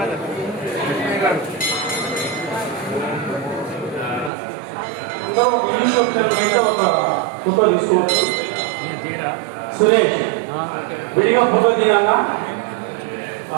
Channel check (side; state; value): left; drops out; at 4.3 s